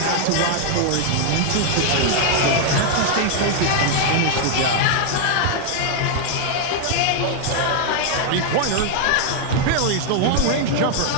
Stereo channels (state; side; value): different; both; correlation 0.00